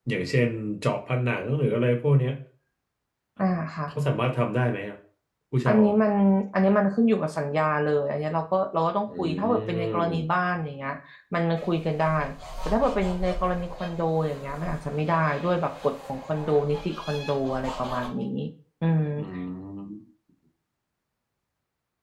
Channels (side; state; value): both; identical; correlation 1.00